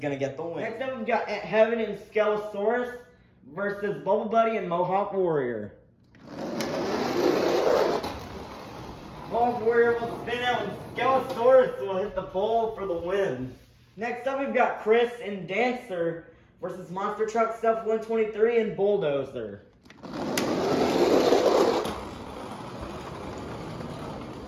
to get the win. Next up we've got Aunt Heaven and Skelosaurus versus Bubble Buddy and Mohawk Warrior. Mohawk Warrior will spin out and Skelosaurus will hit the pole for the win. Next up we've got Chris and Dancer versus Monster Truck Stuff 123 and Bulldozer.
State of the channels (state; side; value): identical; both; correlation 1.00